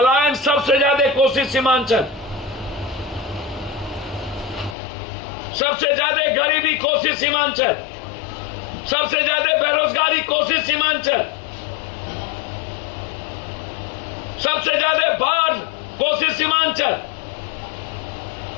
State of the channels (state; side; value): drops out; right; at 4.8 s